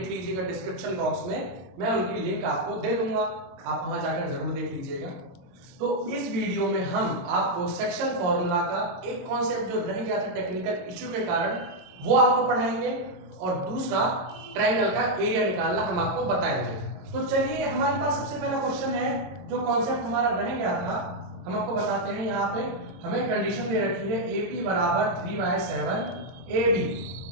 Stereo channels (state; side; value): late; left; 22 ms